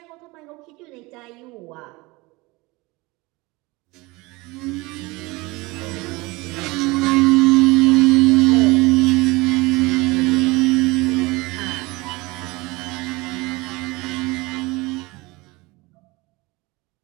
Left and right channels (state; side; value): quieter; left; 23.4 dB